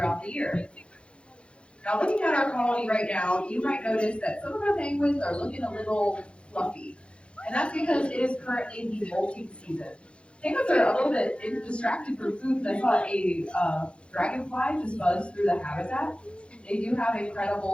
the year. Now, looking at our colony right now, you might notice that some of our penguins are looking a little fluffy, and that's because it is currently the molting season. Penguins are a little bit distracted from food, and I saw a dragonfly just buzz through the habitat. They do have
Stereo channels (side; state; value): right; late; 0.058 ms